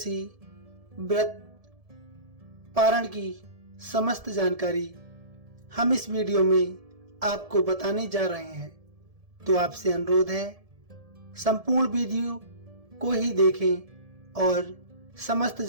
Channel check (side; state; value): left; late; 1.7 ms